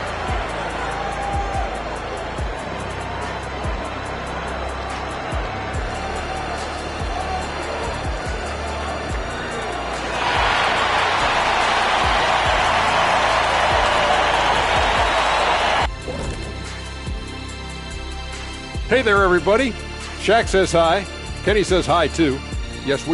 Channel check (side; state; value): both; identical; correlation 1.00